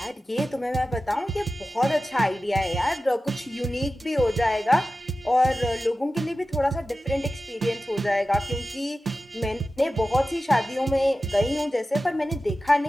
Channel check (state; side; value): normal; both; correlation 0.94